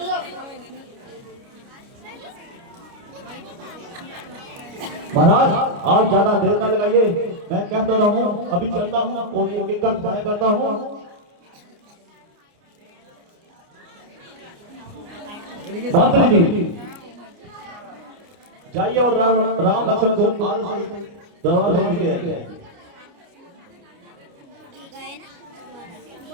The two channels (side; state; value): left; late; 29 ms